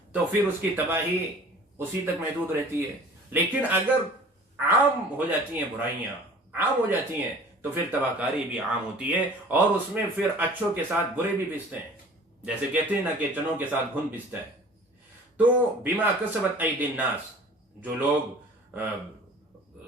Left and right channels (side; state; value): both; normal; correlation 0.46